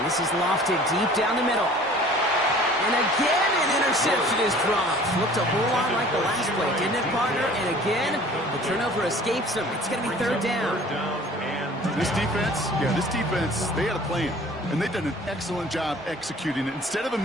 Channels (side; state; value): both; normal; correlation 0.49